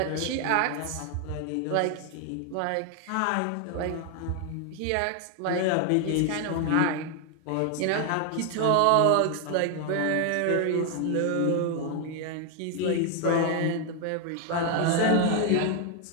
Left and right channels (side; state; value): both; different; correlation 0.01